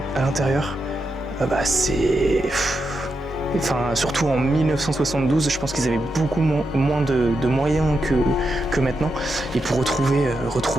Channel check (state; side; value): normal; both; correlation 0.86